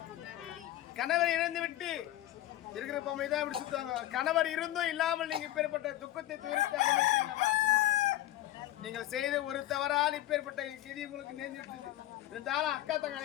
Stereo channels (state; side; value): quieter; right; 14.6 dB